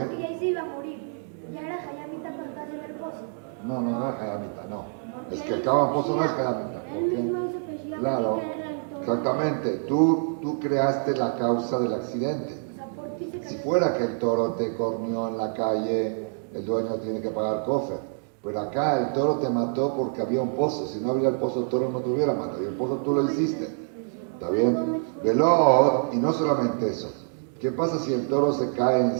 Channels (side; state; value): left; silent; digital silence